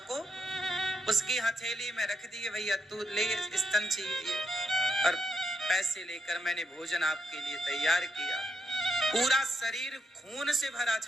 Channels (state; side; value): normal; both; correlation 0.79